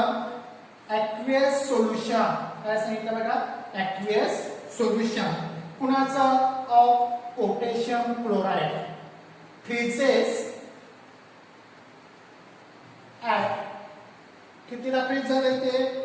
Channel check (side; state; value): both; identical; correlation 1.00